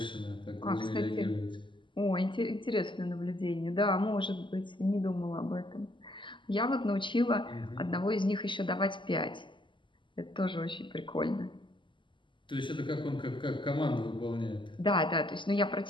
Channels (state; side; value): late; right; 0.24 ms